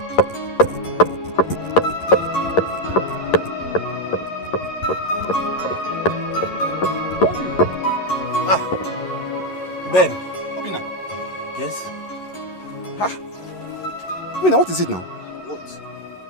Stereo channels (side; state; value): right; late; 11 ms